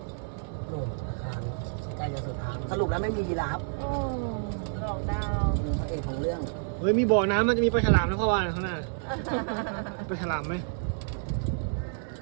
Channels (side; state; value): left; silent; digital silence